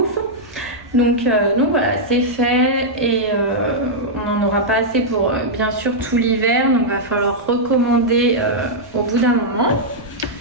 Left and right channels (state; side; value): noise; right; rumble, 24 dB below the sound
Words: donc voilà, c'est fait et on n'en aura pas assez pour bien sûr tout l'hiver, donc il va falloir recommander au bout d'un moment.